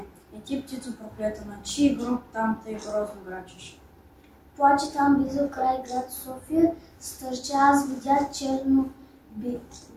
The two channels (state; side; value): identical; both; correlation 1.00